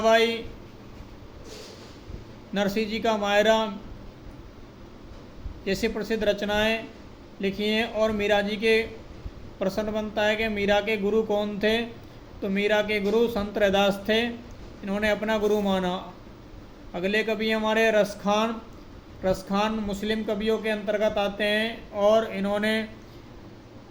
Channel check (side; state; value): both; identical; correlation 1.00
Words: नरसिंह जी का मायरा जैसी प्रसिद्ध रचनाएं लिखी हैं। और मीरा जी के प्रश्न बनता है कि मीरा के गुरु कौन थे, तो मीरा के गुरु संत रैदास थे, इन्होंने अपना गुरु माना। अगले कवि हमारे रसखान, रसखान मुस्लिम कवियों के अंतर्गत आते हैं, और इन्होंने